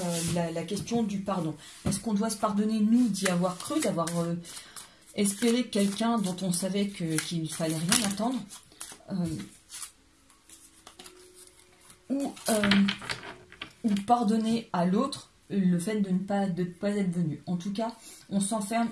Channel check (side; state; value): both; identical; correlation 1.00